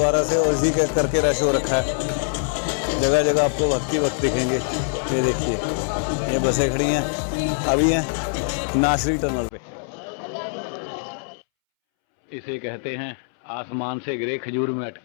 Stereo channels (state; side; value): silent; right; 63 dB below the other